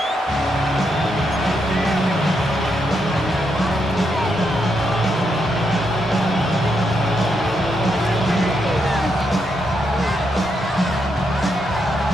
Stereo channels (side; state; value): both; normal; correlation 0.80